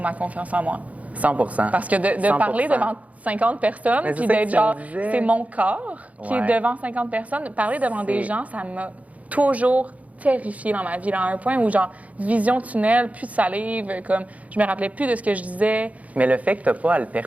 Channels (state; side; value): late; left; 0.069 ms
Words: ma confiance en moi. 100%. Parce que de parler devant 50 personnes, puis d'être genre, c'est mon corps qui est devant 50 personnes, parler devant des gens, ça m'a toujours terrifiée dans ma vie, à un point où, genre, vision tunnel, plus de salive, comme, je me rappelais plus de ce que je disais. Mais le fait que tu n'as pas à le